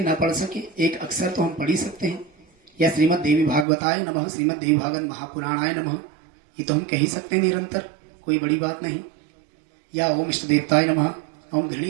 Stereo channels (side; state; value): left; drops out; at 3.7 s